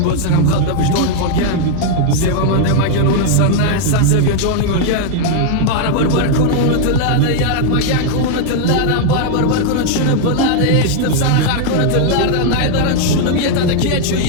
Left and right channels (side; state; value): both; different; correlation 0.00